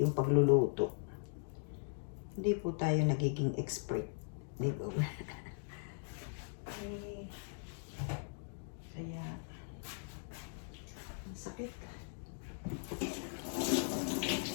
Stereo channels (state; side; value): silent; right; digital silence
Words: pagluluto, hindi po tayo nagiging expert, di ba? Okay. Kaya ang sakit.